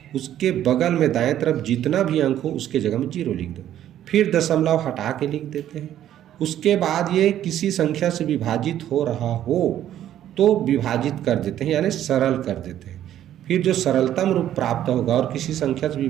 उसके बगल में दाएं तरफ जितना भी अंक हो उसके जगह में 0 लिख दो, फिर दशमलव हटा के लिख देते हैं। उसके बाद ये किसी संख्या से विभाजित हो रहा हो तो विभाजित कर देते हैं, यानी सरल कर देते हैं। फिर जो सरलतम रूप प्राप्त होगा और किसी संख्या से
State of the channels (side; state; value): left; quieter; 11.6 dB